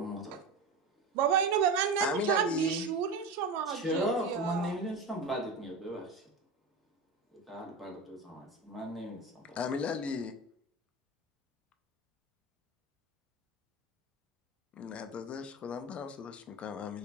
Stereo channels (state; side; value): quieter; left; 3.2 dB